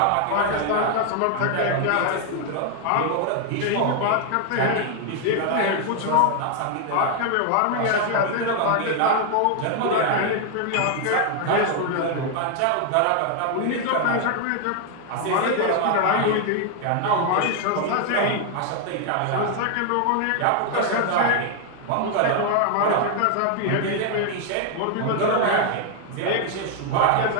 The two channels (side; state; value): both; different; correlation 0.00